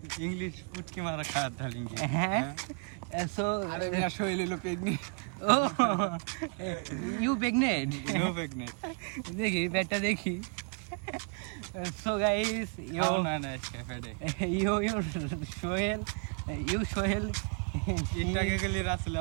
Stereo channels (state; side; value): quieter; left; 39.1 dB